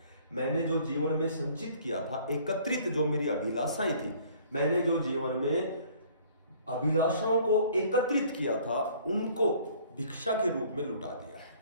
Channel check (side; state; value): both; inverted; correlation -0.55